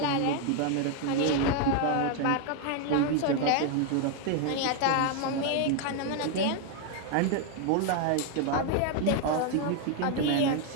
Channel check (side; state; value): both; different; correlation 0.01